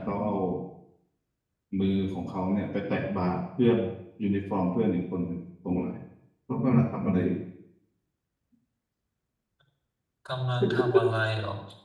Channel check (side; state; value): both; identical; correlation 1.00